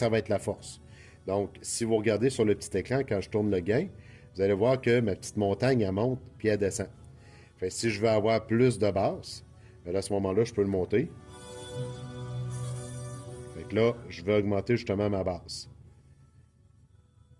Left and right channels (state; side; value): identical; both; correlation 1.00